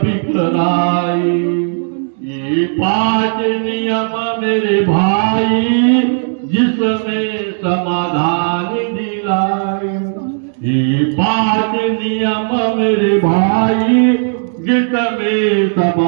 बिखराए, ये 5 नियम मेरे भाई जिसमें समाधान दिलाए। ये 5 नियम मेरे भाई जिसमें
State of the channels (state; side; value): silent; left; digital silence